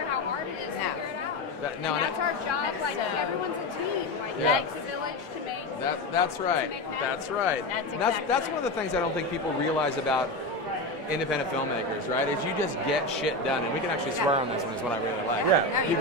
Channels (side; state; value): both; normal; correlation 0.18